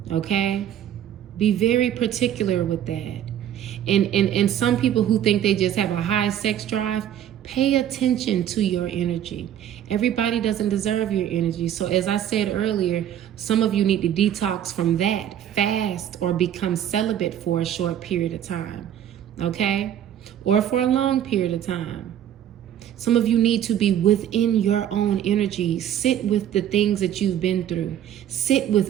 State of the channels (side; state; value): left; quieter; 10.5 dB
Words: Okay? Be very particular with that. And some people who think they just have a high sex drive, pay attention to your energy. Everybody doesn't deserve your energy. So as I said earlier, some of you need to detox from that, fast, or become celibate for a short period of time, okay? Or for a long period of time. Some of you need to be within your own energy. Sit with the things that you've been through. Sit with